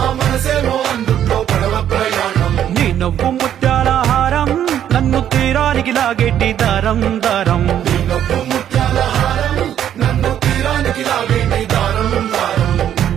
నీ నవ్వు ముత్యాల హారం, నన్ను తీరానికి లాగేటి దారం దారం.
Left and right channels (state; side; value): quieter; left; 10.3 dB